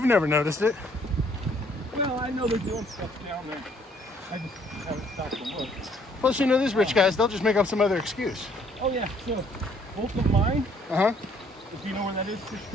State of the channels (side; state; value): both; normal; correlation 0.63